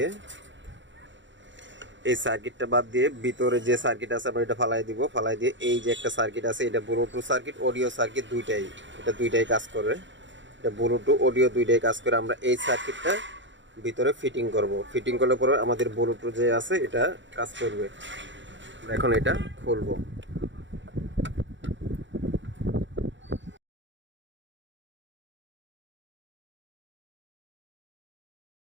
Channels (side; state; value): left; late; 0.54 ms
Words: বাদ দিয়ে ভিতরে যে সার্কিট আছে আমরা এটা ফালাই দিব। ফালাই দিয়ে এই যে একটা সার্কিট আছে, এটা ব্লুটুথ সার্কিট, অডিও সার্কিট দুইটাই কাজ করে। এটা ব্লুটুথ অডিও দুইটাই কাজ করে। আমরা এই সার্কিটটা ভিতরে ফিটিং করব। ফিটিং করলে পরে আমাদের ব্লুটুথ যে আছে এটা কাজ করবে। এখন এটা খুলবো।